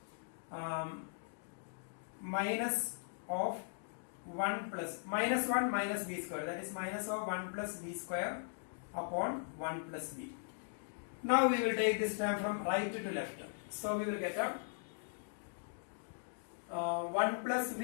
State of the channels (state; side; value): silent; right; digital silence